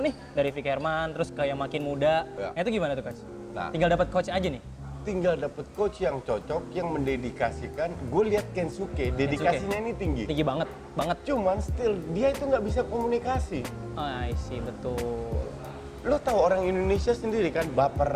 nih dari Vick Herman terus kayak makin muda. Ya. Nah, itu gimana tuh coach? Nah. Tinggal dapat coach aja nih. Tinggal dapet coach yang cocok, yang mendedikasikan. Gue lihat Kensuke, dedikasinya ini tinggi. Tinggi banget, banget. Cuman still dia itu nggak bisa komunikasi. I see, betul. Lo tahu orang Indonesia sendiri kan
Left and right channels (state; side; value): identical; both; correlation 1.00